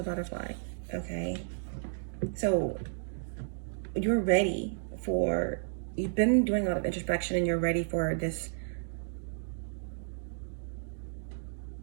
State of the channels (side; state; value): left; silent; digital silence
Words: butterfly, okay? So you're ready for, you've been doing a lot of introspection and you're ready for this